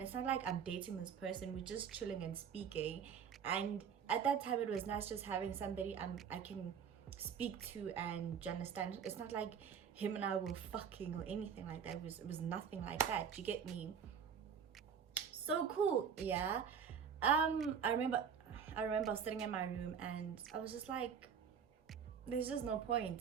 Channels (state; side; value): quieter; left; 7.3 dB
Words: It's not like I'm dating this person, we're just chilling and speaking. And at that time it was nice just having somebody I can speak to, and do you understand? It's not like him and I were fucking or anything like that. It was nothing like that. Do you get me? So cool, yeah. I remember sitting in my room and I was just like, there's just no